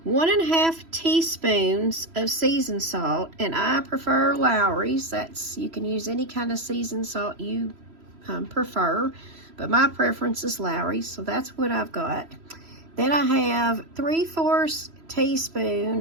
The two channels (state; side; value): late; left; 3.0 ms